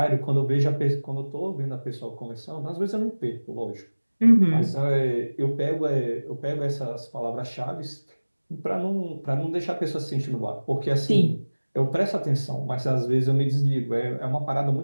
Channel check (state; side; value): inverted; both; correlation -1.00